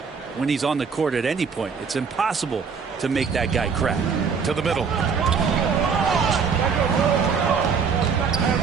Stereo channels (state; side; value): quieter; left; 5.9 dB